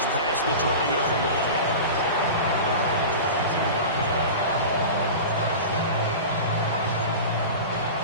past the 20-yard line.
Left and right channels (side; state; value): both; inverted; correlation -0.31